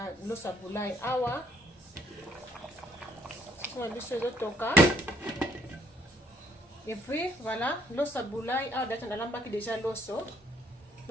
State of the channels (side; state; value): both; normal; correlation 0.66